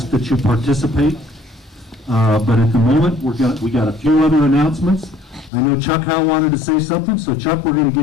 that you participate. But at the moment, we got a few other announcements. I know Chuck Howe wanted to say something, so Chuck, we're going to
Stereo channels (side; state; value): right; drops out; at 5.5 s